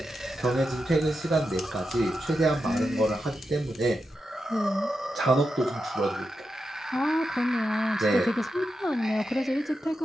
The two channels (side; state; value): both; normal; correlation 0.88